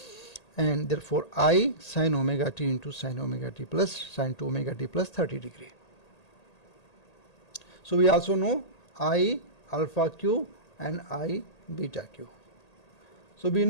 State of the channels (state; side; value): late; right; 1.8 ms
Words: And therefore I sin omega t into sin omega t plus sin 2 omega t plus 30 degree. So we also know I alpha q and I beta q. So we